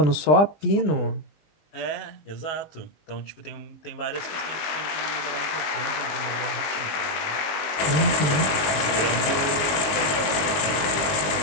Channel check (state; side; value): late; right; 20 ms